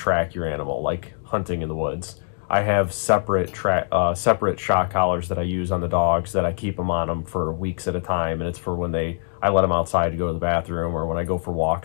your animal, like hunting in the woods. I have separate shock collars that I use on the dogs that I keep them on them for weeks at a time, and it's for when I let them outside to go to the bathroom, or when I go for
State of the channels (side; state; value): right; silent; 63 dB below the other